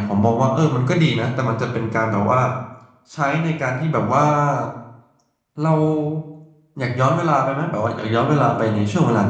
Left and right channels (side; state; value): both; identical; correlation 1.00